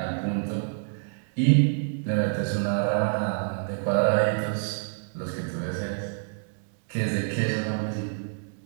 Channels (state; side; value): silent; left; digital silence